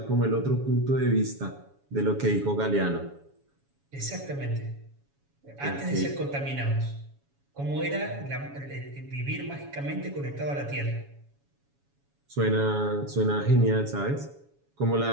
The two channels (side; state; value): left; late; 7.2 ms